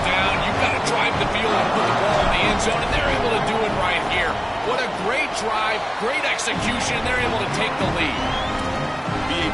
down, you've got to drive the field and put the ball in the end zone, and they're able to do it right here. What a great drive, great execution. They're able to take the lead.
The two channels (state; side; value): identical; both; correlation 1.00